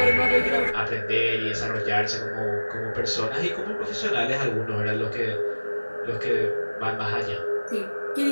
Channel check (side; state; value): both; inverted; correlation -1.00